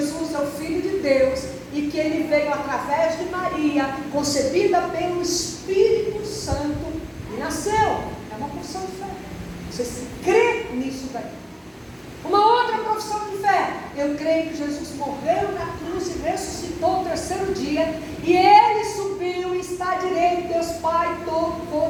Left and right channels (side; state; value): both; identical; correlation 1.00